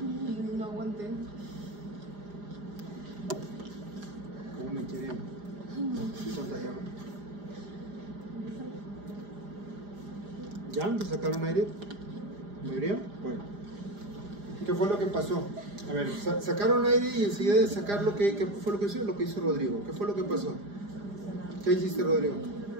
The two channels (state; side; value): late; left; 4.9 ms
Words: No aguanté. ¿Cómo me quieren contagiar? ¿Ya? ¿Te sacaron aire? ¿Mayoría? Bueno. ¿Qué fue lo que pasó? A ver, sacaron aire y enseguida de sacar ¿qué fue lo que hizo? Lo que hizo Rodrigo. ¿Qué fue lo que pasó? ¿Qué hiciste, Rodrigo?